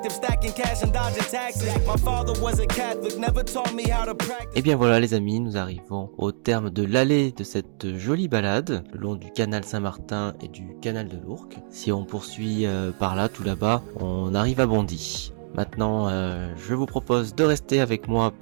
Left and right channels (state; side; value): silent; left; digital silence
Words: stacking cash and dodging taxes. My father was a Catholic, never taught me how to practice. Et bien voilà les amis, nous arrivons au terme de l'allée de cette jolie balade, le long du canal Saint-Martin et du canal de l'Ourcq. Si on poursuit par là, tout là-bas, on arrive à Bondy. Maintenant, je vous propose de rester avec moi